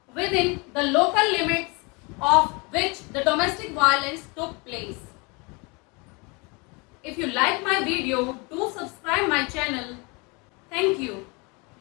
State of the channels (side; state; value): right; quieter; 29.0 dB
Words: within the local limits of which the domestic violence took place. If you like my video, do subscribe my channel. Thank you.